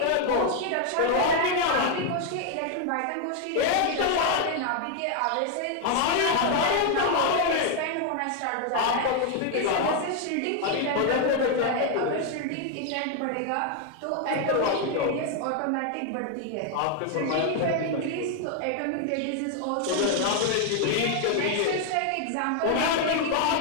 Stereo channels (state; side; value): different; both; correlation 0.01